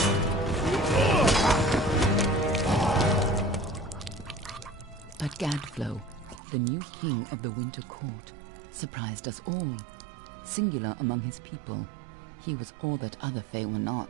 But Gadflow, the new king of the Winter Court, surprised us all. Singular among his people, he was all that other Fae were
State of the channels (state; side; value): drops out; left; at 6.4 s